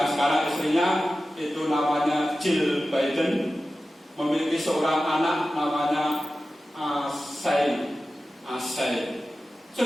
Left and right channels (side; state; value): both; normal; correlation 0.94